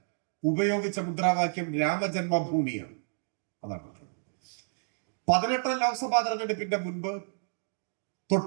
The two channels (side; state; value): left; silent; digital silence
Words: ഉപയോഗിച്ച മുദ്രാവാക്യം രാമജന്മഭൂമിയാണ്. അതാണ് 18ാം ലോക്സഭാ തെരഞ്ഞെടുപ്പിന്റെ